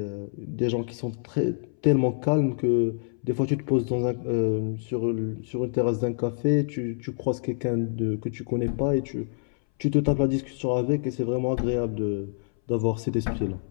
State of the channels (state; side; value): silent; right; 60 dB below the other